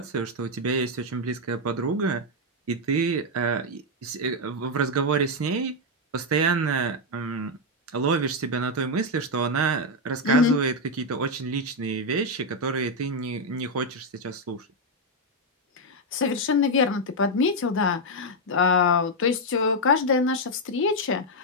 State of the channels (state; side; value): normal; both; correlation 0.01